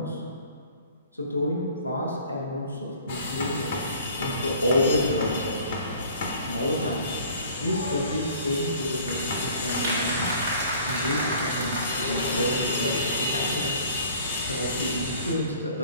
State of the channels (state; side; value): inverted; both; correlation -0.50